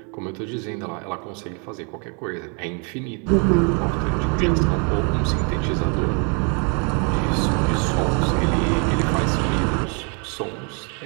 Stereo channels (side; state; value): left; quieter; 36.0 dB